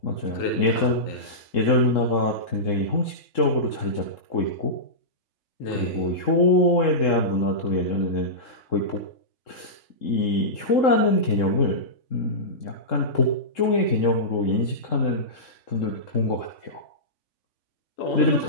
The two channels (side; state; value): right; late; 3.7 ms